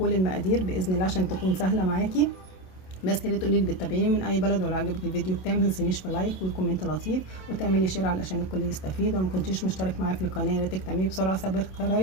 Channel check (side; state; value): right; late; 27 ms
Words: المقادير باذن الله عشان تكون سهله معاكي. بس يا ريت تقولي لي بتتابعيني من اي بلد، ولو عجبك الفيديو بتاعي ما تنسينيش في لايك وكومنت لطيف وتعملي شير علشان الكل يستفيد. ولو ما كنتيش مشترك معايا في القناه يا ريت تعملي بسرعه